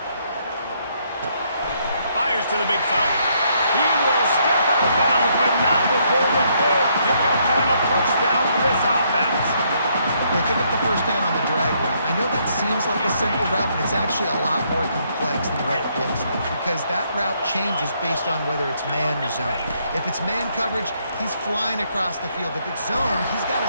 Fires to the big fella. He will step out of bounds, but not before the big pickup and a first down for this offense. They pick up the first down on the drag route. I know that seems like a simple route, but it's actually a lot more complex than what it looks like because that route changes based on whether it's man or zone. If it's man coverage, he's flying across the field. If it's zone, he's got to...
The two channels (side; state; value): both; inverted; correlation -0.71